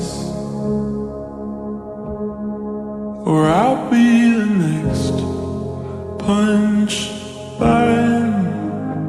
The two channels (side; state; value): both; identical; correlation 1.00